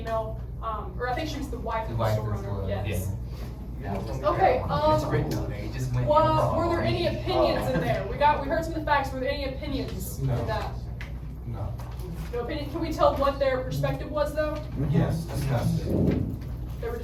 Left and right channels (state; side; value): identical; both; correlation 1.00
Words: or I think she was the wife of the store owner, yes. Okay, were there any opinions in there? We heard some of the facts, were there any opinions in that? No opinion, can we tell what their perspective was though? Yes, disgusting. They were